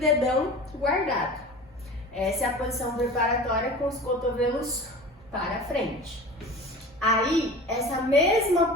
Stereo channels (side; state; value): both; normal; correlation 0.36